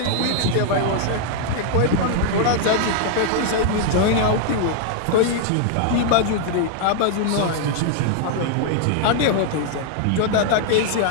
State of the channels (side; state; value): both; different; correlation -0.01